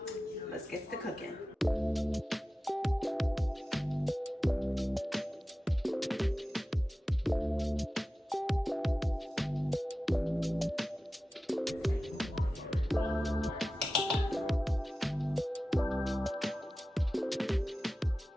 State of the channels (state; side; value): normal; both; correlation 0.95